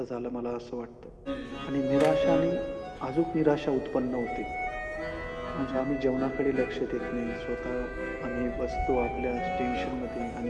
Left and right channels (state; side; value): identical; both; correlation 1.00